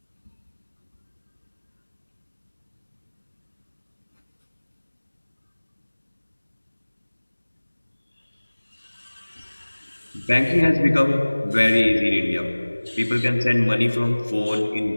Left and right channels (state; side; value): inverted; both; correlation -1.00